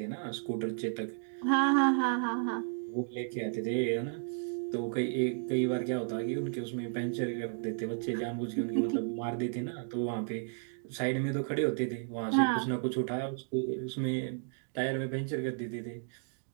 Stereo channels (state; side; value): silent; left; digital silence